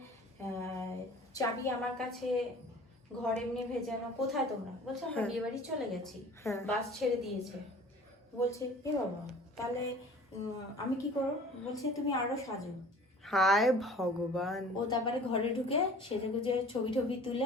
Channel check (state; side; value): normal; both; correlation 0.47